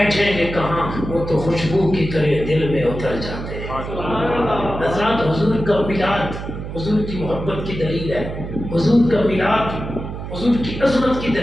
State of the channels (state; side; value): noise; right; hum, 8 dB below the sound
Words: گے کہاں، وہ تو خوشبو کی طرح دل میں اتر جاتے ہیں. حضرات حضور کا میلاد حضور کی محبت کی دلیل ہے. حضور کا میلاد حضور کی عظمت کی